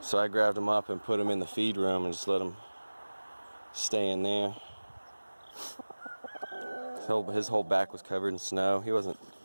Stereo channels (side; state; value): both; inverted; correlation -1.00